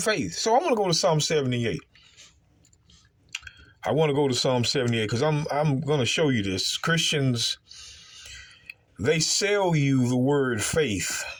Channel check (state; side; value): identical; both; correlation 1.00